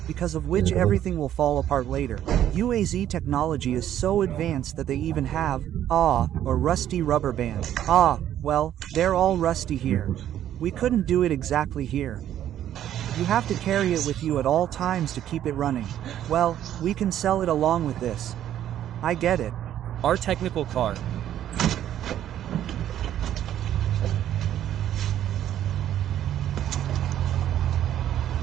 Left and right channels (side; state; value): left; quieter; 11.3 dB